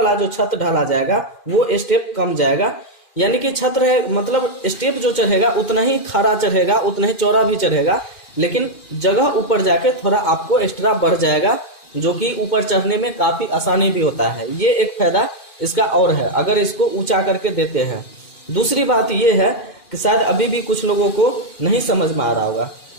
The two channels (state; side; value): late; right; 2.4 ms